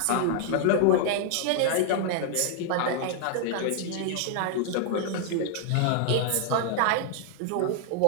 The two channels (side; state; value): both; different; correlation -0.01